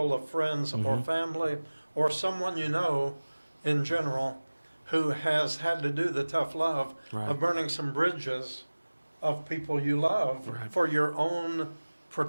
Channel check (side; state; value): both; inverted; correlation -1.00